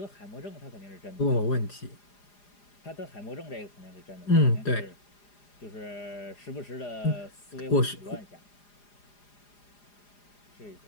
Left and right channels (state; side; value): late; right; 4.9 ms